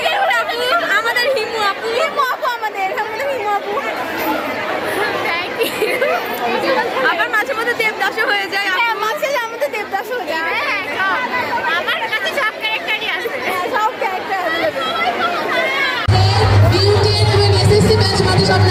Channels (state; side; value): identical; both; correlation 1.00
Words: আপু, আমাদের হিমু আপু, আমাদের হিমু আপু। Thank you. আবার মাঝে মধ্যে দেবদাসও হয়ে যায়। হ্যাঁ মাঝে আমাদের দেবদাস হয়ে যায়। হ্যাঁ আমার কাছে সব ক্যারেক্টারই আছে। হ্যাঁ সব ক্যারেক্টার বিউটি এবং এসএসসি ব্যাচ মানে সব